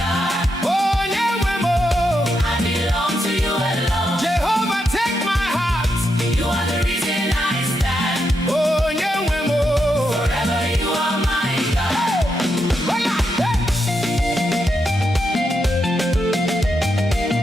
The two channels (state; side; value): normal; both; correlation 0.83